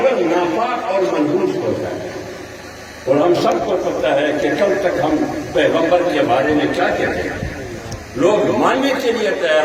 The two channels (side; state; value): both; identical; correlation 1.00